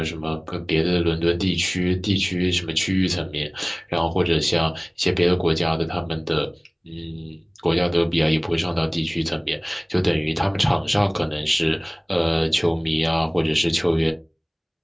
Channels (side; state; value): both; identical; correlation 1.00